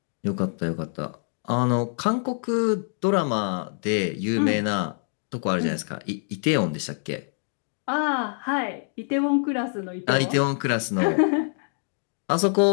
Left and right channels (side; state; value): right; silent; 59 dB below the other